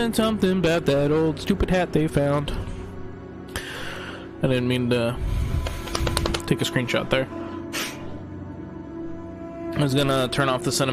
something about that old stupid hat they found. I didn't mean to take a screenshot there. I was gonna turn off the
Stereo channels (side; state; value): both; identical; correlation 1.00